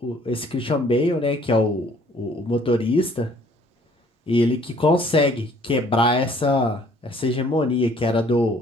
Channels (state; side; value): normal; both; correlation 0.59